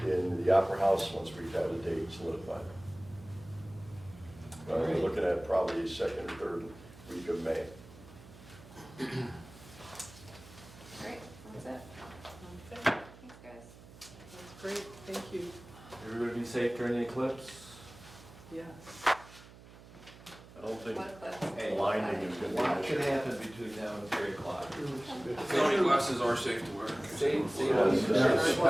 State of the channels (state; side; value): noise; right; hum, 20 dB below the sound